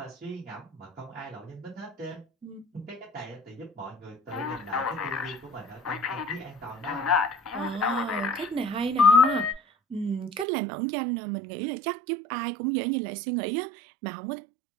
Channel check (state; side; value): drops out; left; at 10.5 s